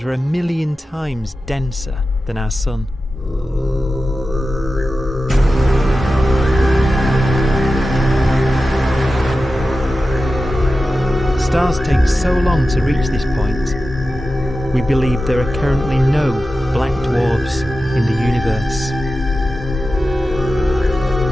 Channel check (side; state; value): both; normal; correlation 0.93